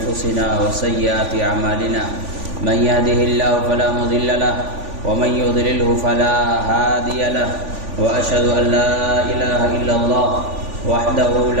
وسيئات أعمالنا من يهده الله فلا مضل له ومن يضلله فلا هادي له وأشهد أن لا إله إلا الله وحده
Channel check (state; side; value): late; left; 3.5 ms